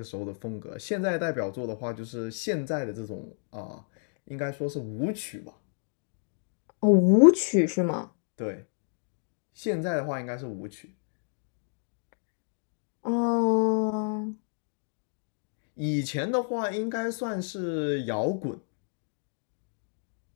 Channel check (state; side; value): silent; right; 58 dB below the other